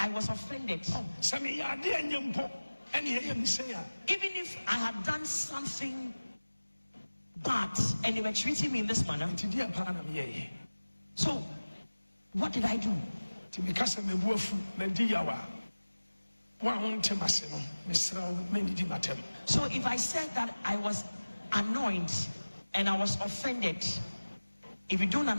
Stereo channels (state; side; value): inverted; both; correlation -1.00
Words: was offended, even if I had done something bad and they were treating me in this manner, so what did I do? So if I said that I was annoyed and I was offended, if you don't